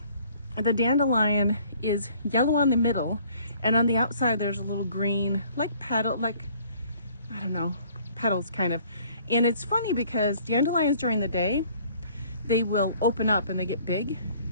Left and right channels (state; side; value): inverted; both; correlation -0.57